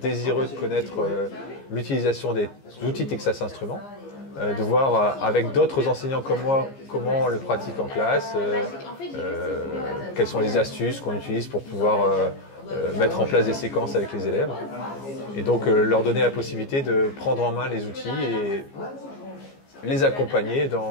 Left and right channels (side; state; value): right; late; 15 ms